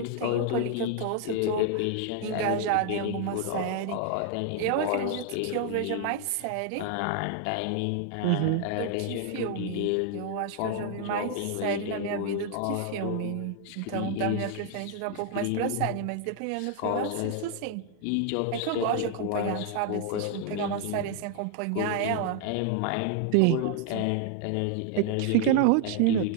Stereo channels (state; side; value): different; both; correlation 0.00